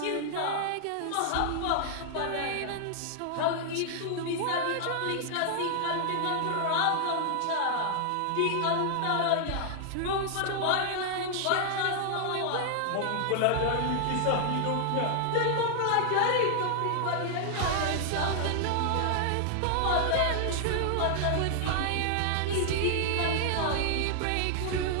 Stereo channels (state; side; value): different; both; correlation 0.00